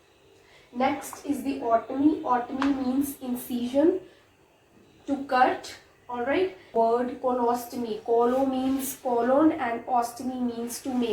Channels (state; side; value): identical; both; correlation 1.00